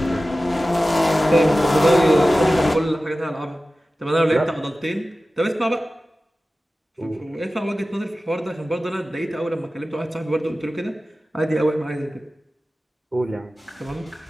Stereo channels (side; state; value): both; normal; correlation 0.95